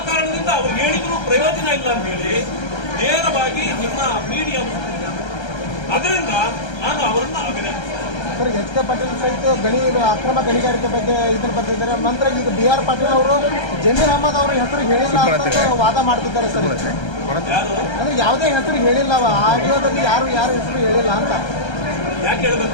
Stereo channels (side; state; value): right; late; 1.3 ms